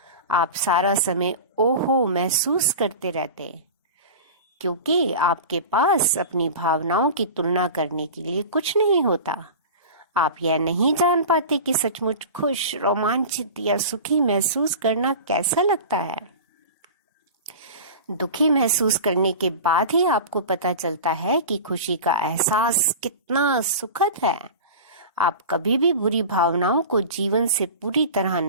आप सारा समय ओहो महसूस करते रहते, क्योंकि आपके पास अपनी भावनाओं की तुलना करने के लिए कुछ नहीं होता। आप यह नहीं जान पाते कि सचमुच खुश, रोमांचित या सुखी महसूस करना कैसा लगता है। दुखी महसूस करने के बाद ही आपको पता चलता है कि खुशी का एहसास कितना सुखद है। आप कभी भी बुरी भावनाओं को जीवन से पूरी तरह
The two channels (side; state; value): both; inverted; correlation -0.33